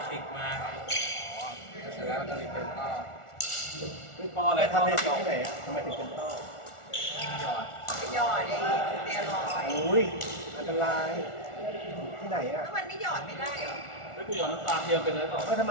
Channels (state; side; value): late; right; 1.4 ms